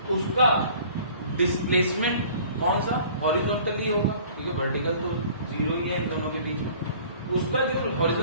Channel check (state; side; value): inverted; both; correlation -0.50